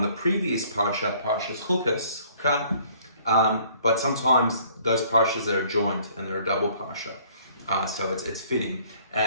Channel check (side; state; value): both; inverted; correlation -0.58